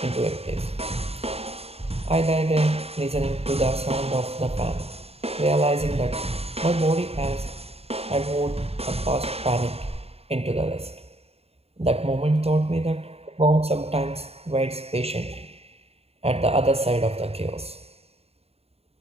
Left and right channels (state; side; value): late; left; 0.29 ms